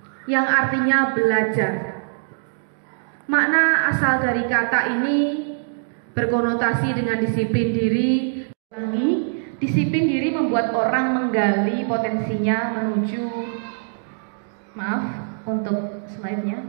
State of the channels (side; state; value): left; silent; digital silence